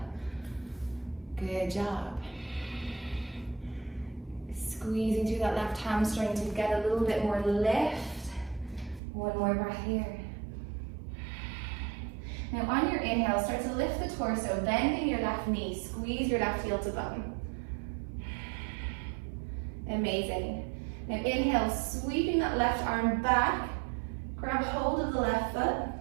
Good job. Squeezing through that left hamstring to get a little bit more lift. One more breath here. Now on your inhale, start to lift the torso, bending your left knee. Squeeze your left heel to bum. Amazing. Now inhale, sweeping that left arm back. Grab hold of the left foot.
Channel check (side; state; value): left; drops out; at 9.0 s